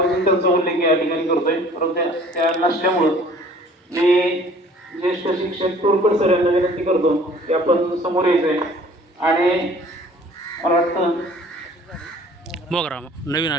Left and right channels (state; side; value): normal; both; correlation 0.51